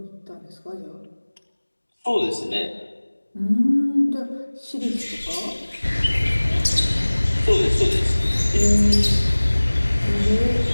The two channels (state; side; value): inverted; both; correlation -1.00